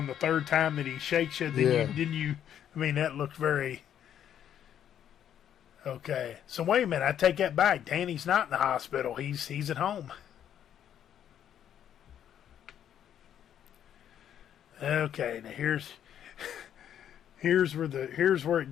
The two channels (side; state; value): right; quieter; 9.8 dB